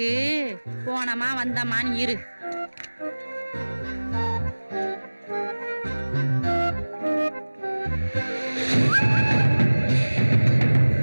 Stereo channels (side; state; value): both; inverted; correlation -1.00